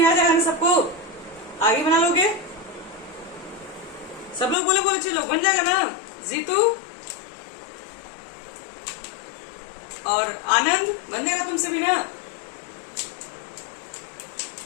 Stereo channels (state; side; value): drops out; right; at 4.5 s